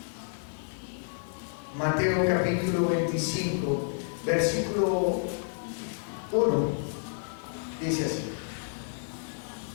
Mateo capítulo 25, versículo 1, dice así:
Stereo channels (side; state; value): right; silent; digital silence